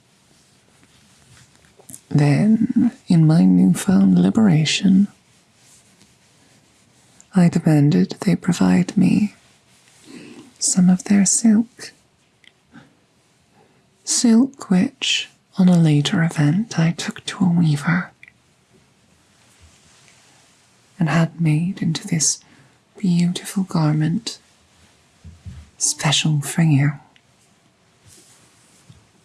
Then, in my newfound liberation, I demanded they provide me some of their silk. Silk which, on a later event, I took to a weaver and had made into this beautiful garment special for you.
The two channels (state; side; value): identical; both; correlation 1.00